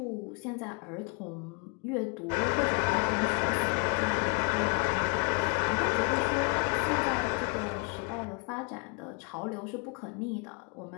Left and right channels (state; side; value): quieter; right; 33.9 dB